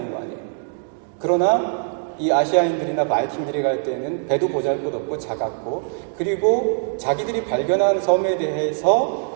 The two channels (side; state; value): left; silent; digital silence